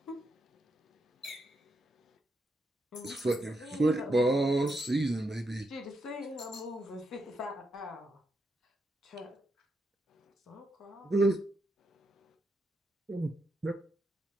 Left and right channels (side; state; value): both; normal; correlation 0.82